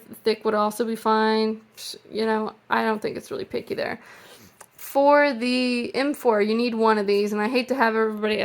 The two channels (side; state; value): both; identical; correlation 1.00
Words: would also be fine. You know, I don't think it's really picky there. For the M4, you need one of these, and I hate to have everybody